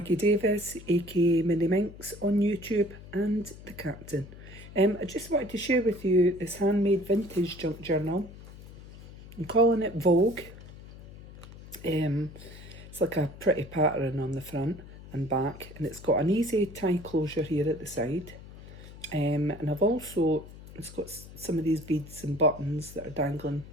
Davis, aka Mini Minx on YouTube and the Captain. I just wanted to share with you this handmade vintage junk journal. I'm calling it Vogue. It's like a pretty pattern on the front and back, and it's got an easy tie closure here at the side. And it's got some of these beads and buttons that are dangling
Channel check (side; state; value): left; noise; hum, 17 dB below the sound